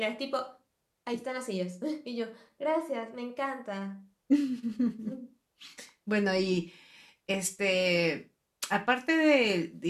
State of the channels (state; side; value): identical; both; correlation 1.00